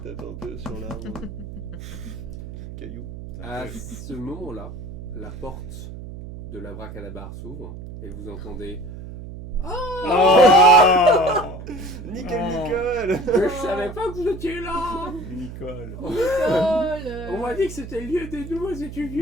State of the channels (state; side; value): noise; right; hum, 11 dB below the sound